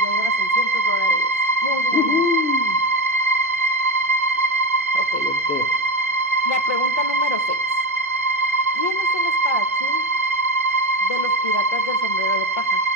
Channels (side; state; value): both; normal; correlation 0.19